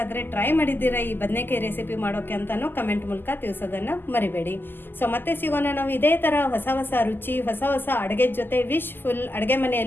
ಟ್ರೈ ಮಾಡಿದ್ದೀರಾ ಈ ಬದನೆಕಾಯಿ ರೆಸಿಪಿ ಮಾಡೋಕೆ ಅಂತಲೂ ಕಮೆಂಟ್ ಮೂಲಕ ತಿಳಿಸೋದನ್ನು ಮರಿಬೇಡಿ. ಸೊ ಮತ್ತೆ ಸಿಗೋಣ ನಾವು ಇದೇ ಥರ ಹೊಸ ಹೊಸ ರುಚಿ, ಹೊಸ ಹೊಸ ಅಡುಗೆ ಜೊತೆ. ವಿಶ್ ಫುಲ್ ಅಡುಗೆ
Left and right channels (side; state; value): right; late; 0.095 ms